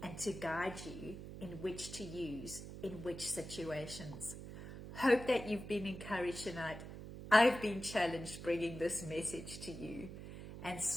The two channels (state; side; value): noise; right; hum, 11 dB below the sound